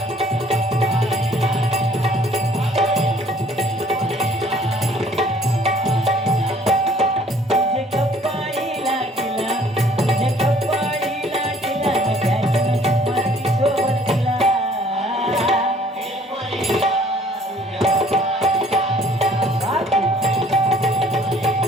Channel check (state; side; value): normal; both; correlation 0.57